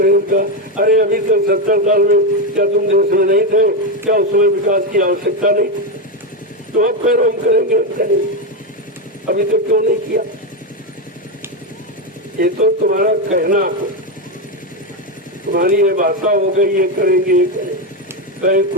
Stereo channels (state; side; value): normal; both; correlation 0.09